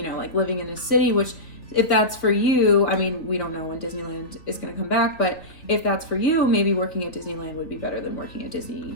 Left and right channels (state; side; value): late; right; 3.3 ms